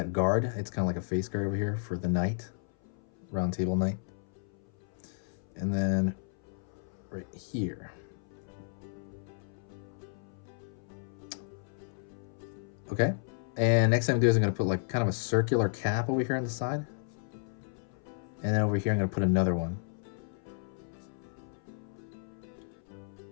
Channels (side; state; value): right; silent; 56 dB below the other